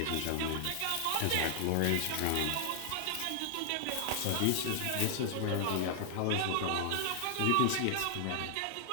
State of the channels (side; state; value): both; different; correlation 0.00